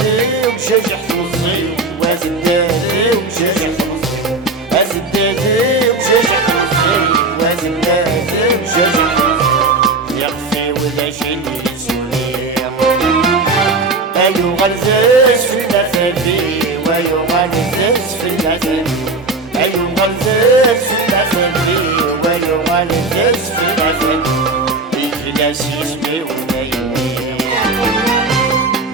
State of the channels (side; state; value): left; quieter; 3.4 dB